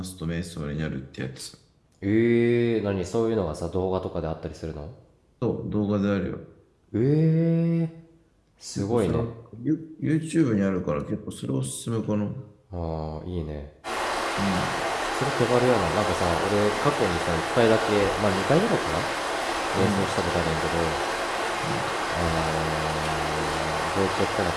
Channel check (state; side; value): identical; both; correlation 1.00